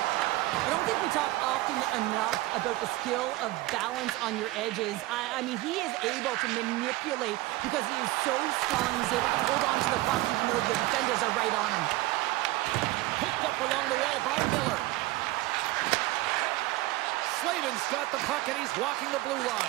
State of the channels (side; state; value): left; quieter; 18.8 dB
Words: I don't think we talk often enough about the skill of balance on your edges. I mean, he is able to manipulate because he is so strong. He's able to hold on to the puck even though the defenders are right on him. Picked up along the wall by Miller. Slavin's got the puck and he's walking the blue